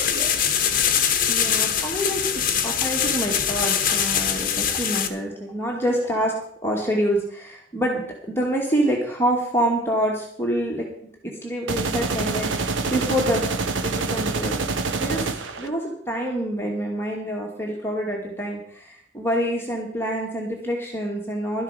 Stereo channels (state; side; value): normal; both; correlation 0.36